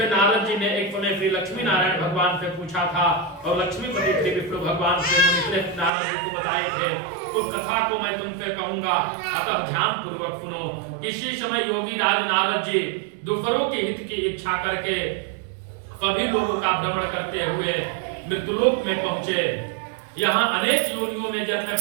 नारद जी ने एक समय श्री लक्ष्मी नारायण भगवान से पूछा था और लक्ष्मीपति श्री विष्णु भगवान से मुनिश्रेष्ठ नारद जी को बताए थे। उस कथा को मैं तुमसे कहूंगा, अतः ध्यान पूर्वक सुनो। किसी समय योगी राज नारद जी दूसरों के हित की इच्छा करके सभी लोगों का भ्रमण करते हुए मृत्युलोक में पहुंचे। यहाँ अनेक योनियों में जन्मे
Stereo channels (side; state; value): left; drops out; at 5.9 s